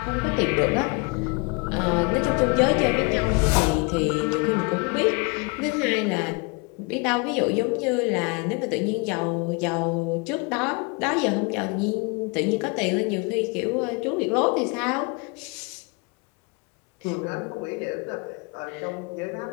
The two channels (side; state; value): right; quieter; 30.8 dB